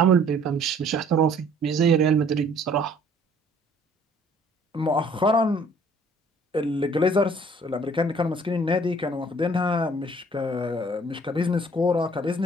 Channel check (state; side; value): normal; both; correlation 0.56